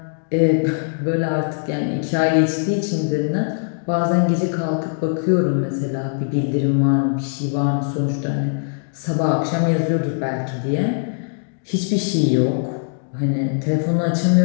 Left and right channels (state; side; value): silent; right; digital silence